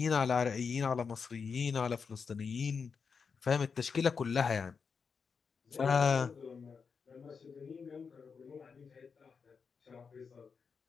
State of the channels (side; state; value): right; quieter; 5.7 dB